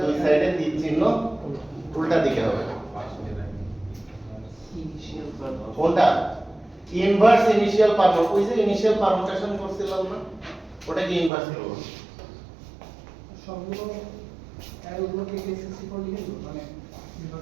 দুই সাইডে তীর চিহ্ন উল্টা দিকে হবে। ইনিশিয়াল কোনটা? Inverse initial permutation. ওই যে ইনিশিয়াল পারমুটেশন করছিলাম না, ওটাকে ইনভার্স করব। সবগুলো অ্যারোগুলোকে A64 লিখে দেবো, মানে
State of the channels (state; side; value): drops out; left; at 11.3 s